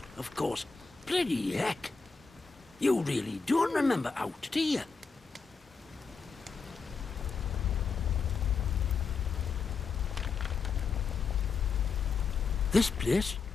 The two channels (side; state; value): right; quieter; 5.0 dB